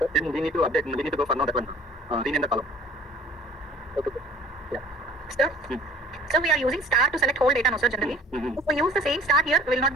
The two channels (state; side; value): normal; both; correlation 0.50